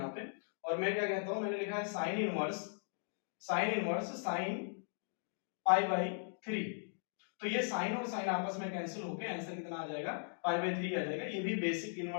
पे, और मैं क्या कहता हूं, मैंने लिखा है साइन इनवर्स साइन π/3। तो ये साइन और साइन आपस में कैंसिल होके आंसर कितना आ जाएगा, π/3 आ जाएगा। ये भी बेसिक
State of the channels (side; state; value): right; silent; digital silence